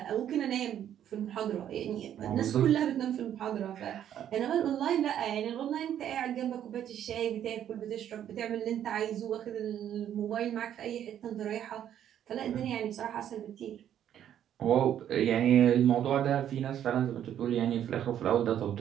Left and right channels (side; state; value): left; quieter; 10.3 dB